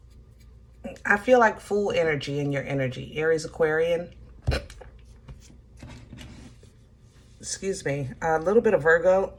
feel like full energy in your energy. Aries, Aquarian. Excuse me. A little bit of Virgo.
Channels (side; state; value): both; identical; correlation 1.00